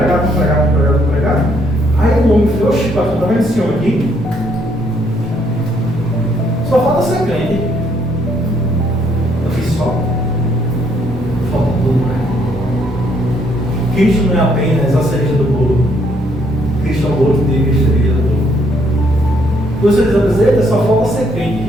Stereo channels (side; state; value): both; normal; correlation 0.69